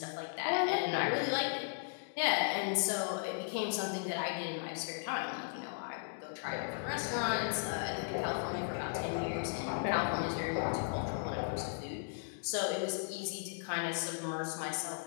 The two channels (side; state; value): right; silent; digital silence